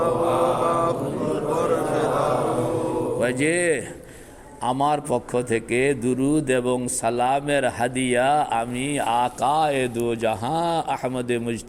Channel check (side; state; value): both; identical; correlation 1.00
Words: वजह আমার পক্ষ থেকে দুরুদ এবং সালামের হাদিয়া আমি আকায়ে দো জাহাঁ আহমদে